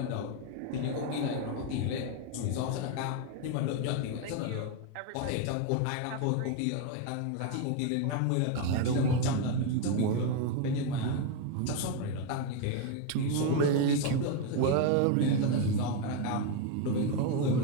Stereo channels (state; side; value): different; both; correlation 0.02